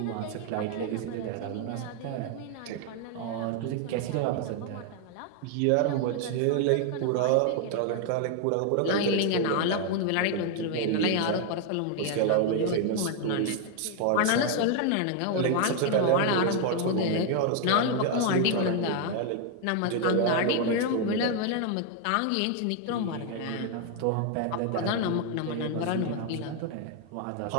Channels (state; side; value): different; both; correlation 0.00